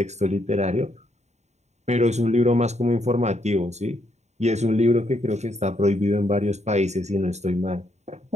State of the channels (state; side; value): late; left; 0.33 ms